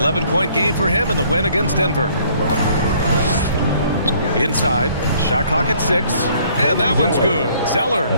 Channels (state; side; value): inverted; both; correlation -0.61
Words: game for him in the win against Denver. Inside. Shot clock at 6. And that one's good. Zeller.